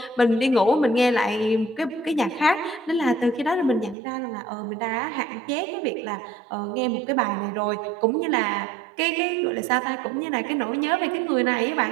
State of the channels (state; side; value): drops out; left; at 4.0 s